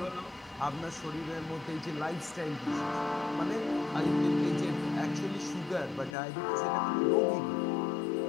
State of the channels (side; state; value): right; drops out; at 6.2 s